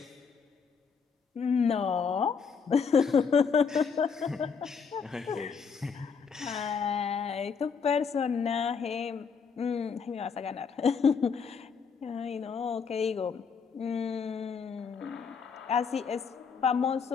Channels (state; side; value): quieter; right; 6.0 dB